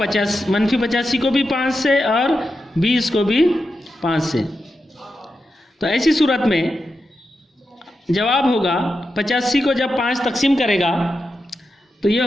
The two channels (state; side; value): normal; both; correlation 0.88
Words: को भी 5 से और 20 को भी 5 से। तो ऐसी सूरत में जवाब होगा 85 को जब 5 तकसीम करेगा तो ये